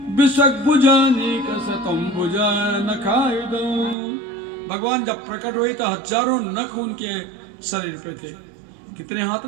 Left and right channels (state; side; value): drops out; left; at 4.0 s